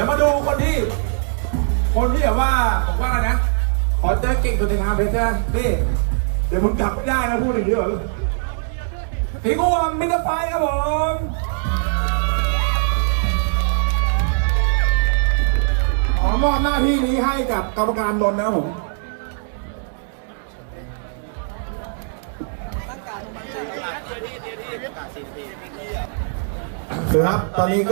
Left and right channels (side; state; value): left; silent; 65 dB below the other